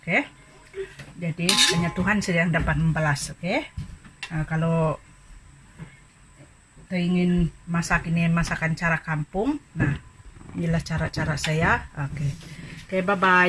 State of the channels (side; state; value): both; identical; correlation 1.00